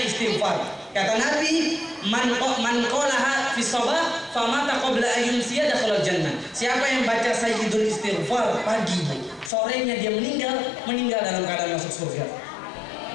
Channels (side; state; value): right; drops out; at 9.5 s